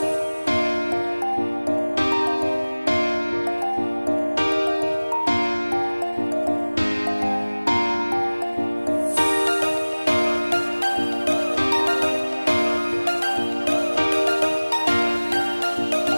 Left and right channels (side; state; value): both; inverted; correlation -1.00